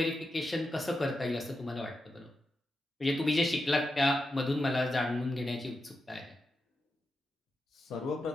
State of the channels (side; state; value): both; normal; correlation 0.88